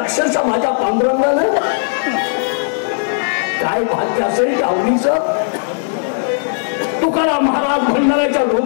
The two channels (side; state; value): right; silent; digital silence